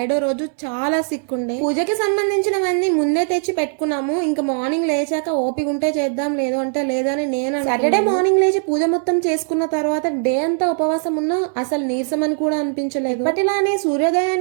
రోజు చాలా సిక్ ఉండే. పూజకి సంబంధించినవన్నీ ముందే తెచ్చి పెట్టుకున్నాము. ఇంకా మార్నింగ్ లేచాక ఓపిక ఉంటే చేద్దాం, లేదు అంటే లేదని నేను సాటర్డే మార్నింగ్ లేచి పూజ మొత్తం చేసుకున్న తర్వాత డే అంతా ఉపవాసం ఉన్నా అసలు నీరసం అని కూడా అనిపించలేదు. ఇప్పటిలానే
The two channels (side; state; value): left; silent; 61 dB below the other